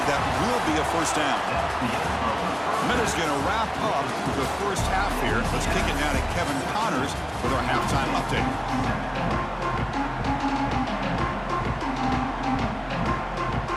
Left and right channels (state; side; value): identical; both; correlation 1.00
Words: That will be a first down. Minutes going to wrap up the first half here. Let's kick it now to Kevin Connors with our halftime update.